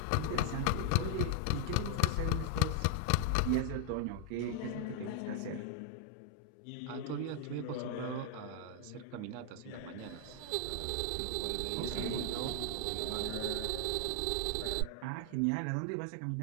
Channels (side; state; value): both; different; correlation 0.00